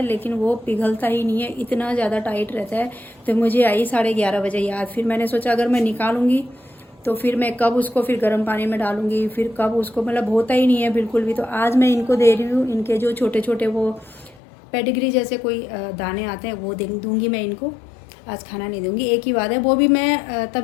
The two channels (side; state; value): right; drops out; at 14.4 s